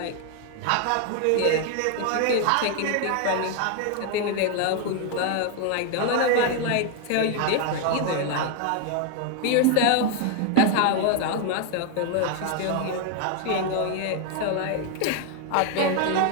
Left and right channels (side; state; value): both; different; correlation 0.01